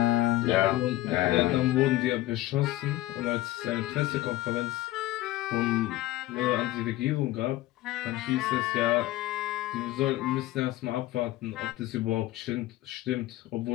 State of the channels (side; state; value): right; quieter; 16.2 dB